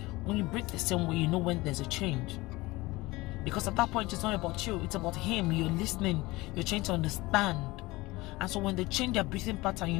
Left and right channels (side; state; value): right; quieter; 21.0 dB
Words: When you breathe the same way, you know when there's a change. Because at that point, it's not about you, it's about him. You're listening, you're trying to understand. And so when they change their breathing pattern, you